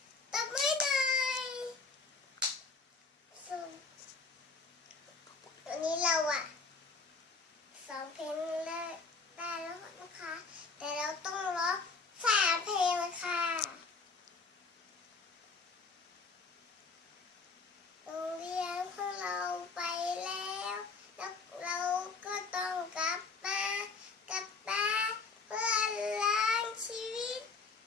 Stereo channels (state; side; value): quieter; right; 4.5 dB